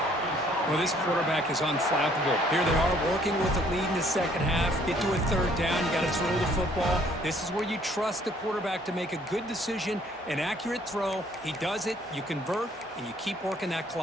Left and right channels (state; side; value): normal; both; correlation 0.62